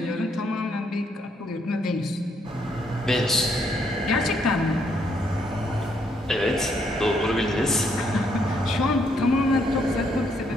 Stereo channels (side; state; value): both; normal; correlation 0.73